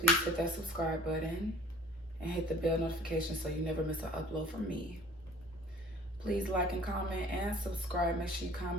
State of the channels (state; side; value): noise; right; rumble, 24 dB below the sound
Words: hit that subscribe button and hit the bell notification so you never miss an upload from me. Please like and comment and subscribe. Make sure you